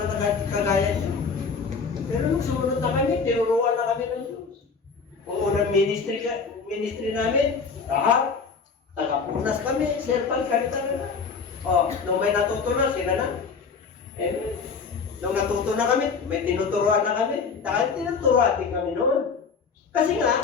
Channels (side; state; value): right; quieter; 5.3 dB